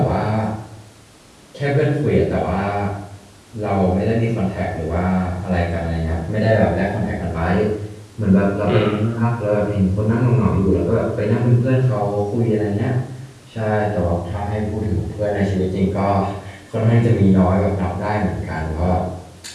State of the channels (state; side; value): identical; both; correlation 1.00